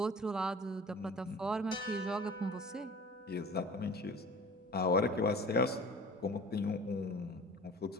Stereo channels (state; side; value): normal; both; correlation 0.43